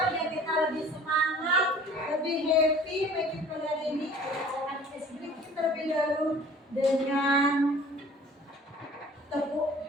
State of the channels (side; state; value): both; normal; correlation 0.48